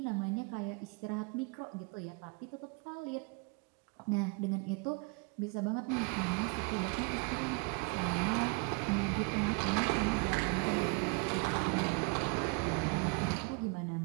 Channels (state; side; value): quieter; left; 30.8 dB